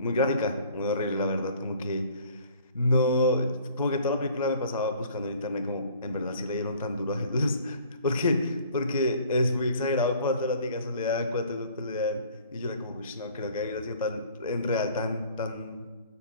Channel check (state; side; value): inverted; both; correlation -0.53